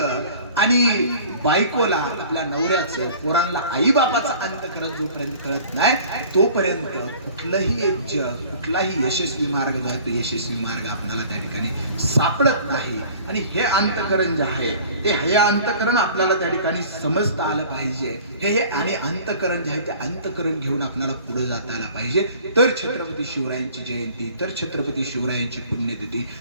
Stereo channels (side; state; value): both; inverted; correlation -0.47